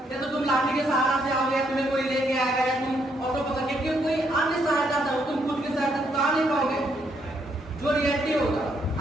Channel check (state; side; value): normal; both; correlation 0.74